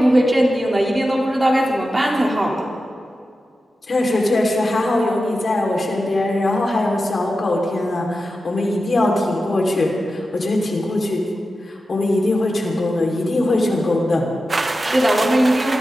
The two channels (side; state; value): both; normal; correlation 0.92